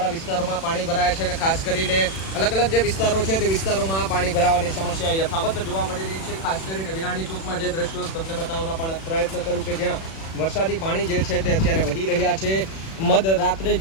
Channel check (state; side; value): late; right; 36 ms